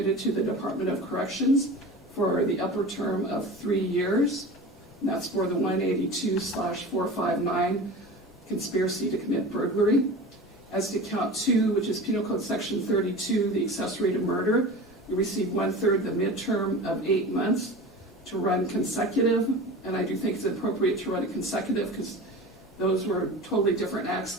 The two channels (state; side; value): normal; both; correlation 0.34